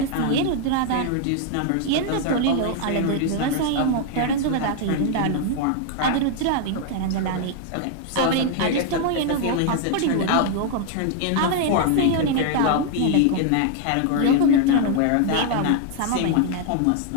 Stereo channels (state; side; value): different; both; correlation 0.00